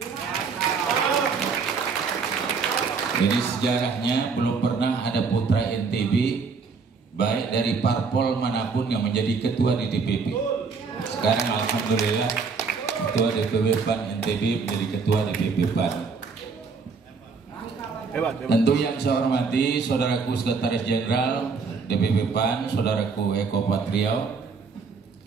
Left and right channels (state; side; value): quieter; left; 5.0 dB